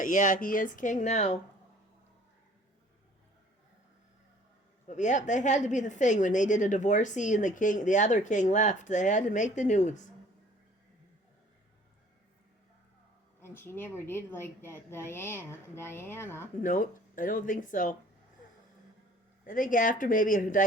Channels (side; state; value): both; normal; correlation 0.53